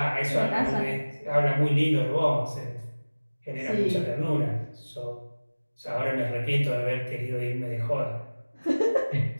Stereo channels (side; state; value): both; inverted; correlation -1.00